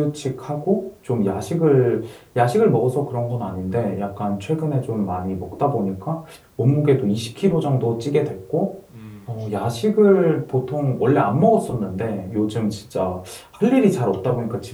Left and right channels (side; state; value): both; identical; correlation 1.00